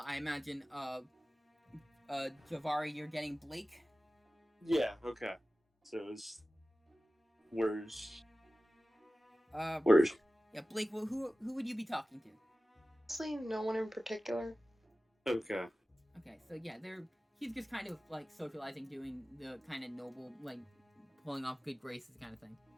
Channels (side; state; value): both; normal; correlation 0.96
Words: imagine, Givarri, you're getting Blake? Yeah. Okay. So it's where's Uh, where's yeah, Blake. Well, who would you be talking to? Honestly, no one in particular. okay? Okay, so yeah, he's just kind of like socializing, doing the kind of noble, like pulling off good graces kind of thing.